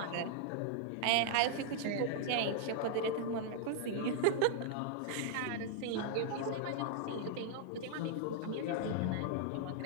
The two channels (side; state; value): both; different; correlation -0.01